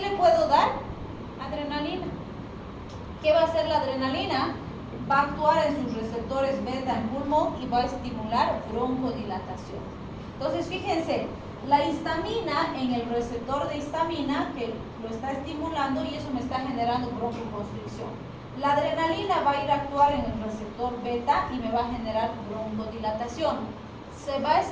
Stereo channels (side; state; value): both; identical; correlation 1.00